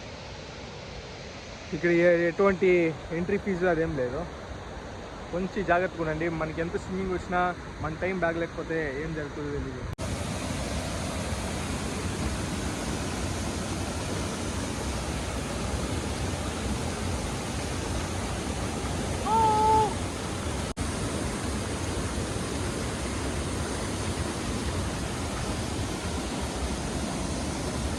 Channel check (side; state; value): both; identical; correlation 1.00